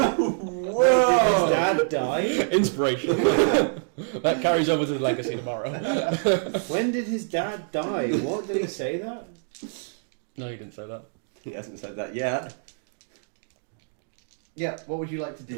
Whoa! Did his dad die? Inspiration. That carries over to the legacy tomorrow. When did his dad die? What did he say that? No, you didn't say that. He hasn't said that yet. Yeah, what would you like to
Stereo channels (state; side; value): silent; left; digital silence